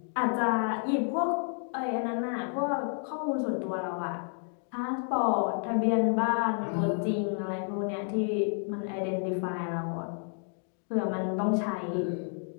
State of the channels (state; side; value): silent; right; 55 dB below the other